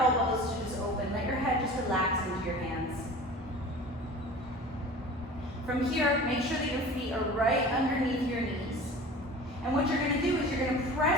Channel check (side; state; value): both; normal; correlation 0.39